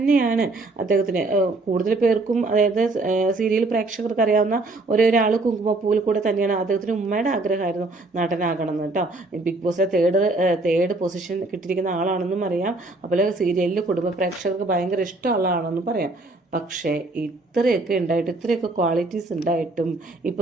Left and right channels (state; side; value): quieter; left; 3.1 dB